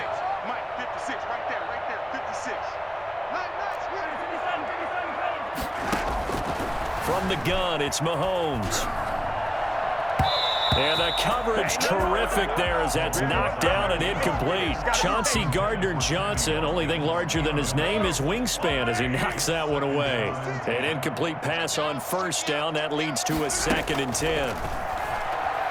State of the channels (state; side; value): identical; both; correlation 1.00